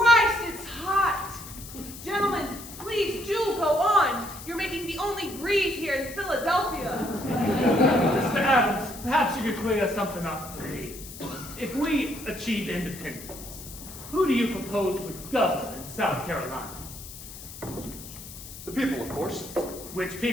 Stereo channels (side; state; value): left; noise; hiss, 14 dB below the sound